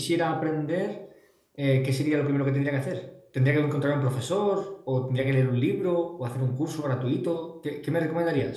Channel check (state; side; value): identical; both; correlation 1.00